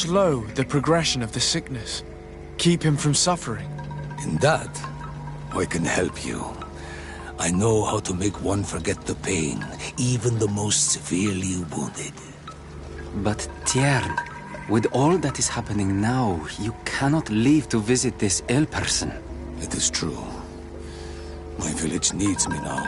the progression of the sickness? Keep him from suffering? In that, I can help you. I know how to make one forget the pain, even the most severely wounded. But Tiern, with all that is happening now, you cannot leave to visit this ill person. It is true. My village needs me now.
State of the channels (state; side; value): identical; both; correlation 1.00